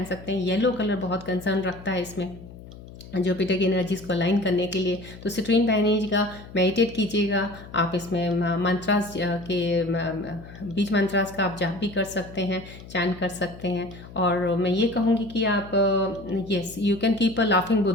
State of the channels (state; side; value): noise; left; hum, 17 dB below the sound